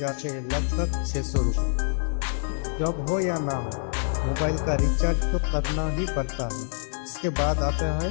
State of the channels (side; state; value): right; silent; digital silence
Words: जाते हैं लगभग 600 रुपये। जॉब हो या ना हो, मोबाइल का रिचार्ज तो करना ही पड़ता है। इसके बाद आता है